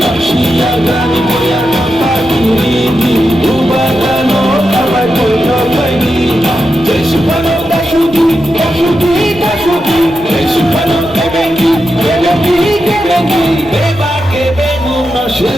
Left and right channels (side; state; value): right; noise; rumble, 21 dB below the sound